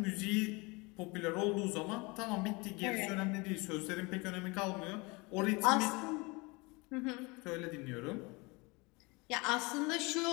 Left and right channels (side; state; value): right; quieter; 26.5 dB